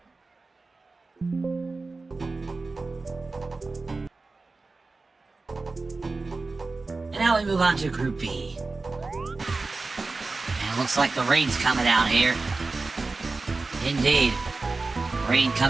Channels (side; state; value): left; quieter; 3.7 dB